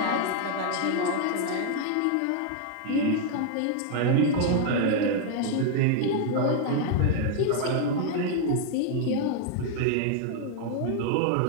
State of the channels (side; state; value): both; different; correlation 0.00